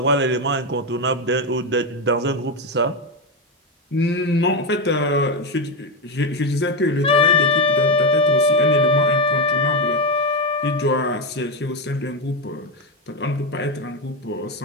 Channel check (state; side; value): normal; both; correlation 0.09